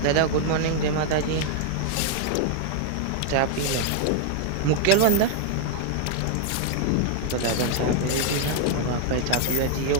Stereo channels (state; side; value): different; both; correlation 0.00